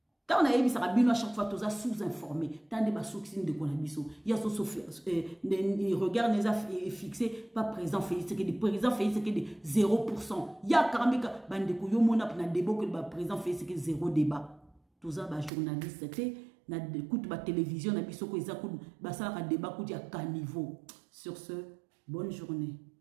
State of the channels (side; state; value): left; drops out; at 15.5 s